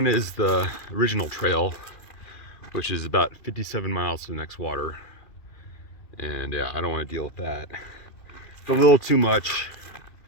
is the original trail, which is about 57 miles to the next water. And yeah, I don't want to deal with that. It's a little too much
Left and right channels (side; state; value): right; late; 2.4 ms